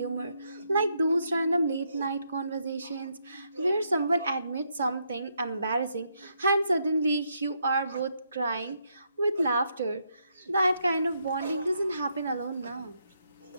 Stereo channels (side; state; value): both; inverted; correlation -0.77